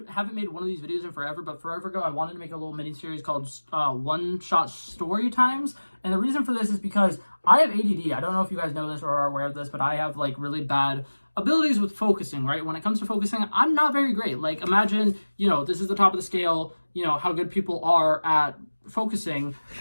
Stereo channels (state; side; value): inverted; both; correlation -1.00